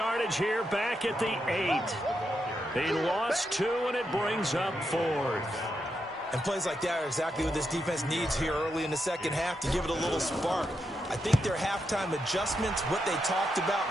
here back at the 8. He lost 2, and it brings up 4th. And plays like that are exactly what this defense needs here early in the second half to give it a little spark. I think their halftime adjustments, what they talked about,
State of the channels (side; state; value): both; normal; correlation 0.84